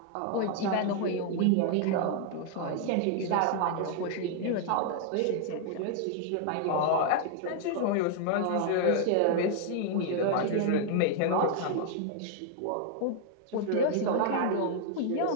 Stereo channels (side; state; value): both; different; correlation 0.00